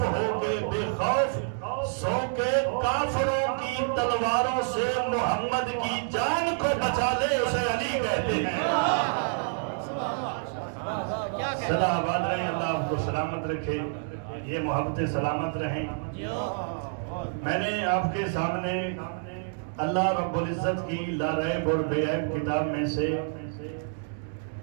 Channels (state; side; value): silent; left; digital silence